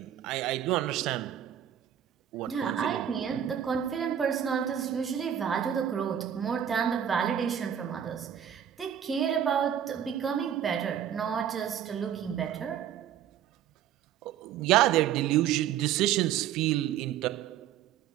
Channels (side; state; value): left; quieter; 9.7 dB